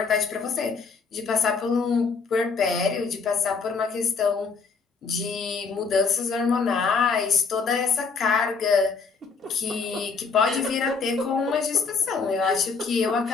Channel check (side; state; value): right; quieter; 5.0 dB